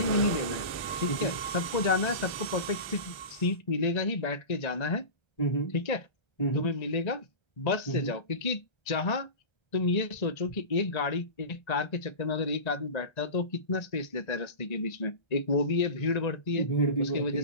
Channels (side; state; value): right; late; 1.3 ms